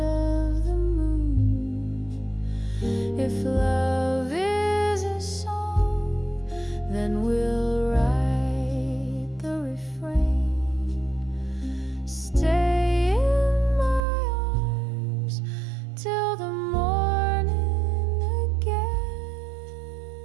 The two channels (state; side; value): drops out; left; at 14.1 s